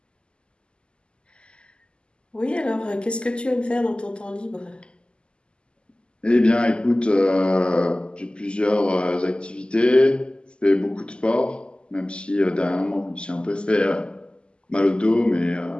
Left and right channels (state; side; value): late; right; 0.050 ms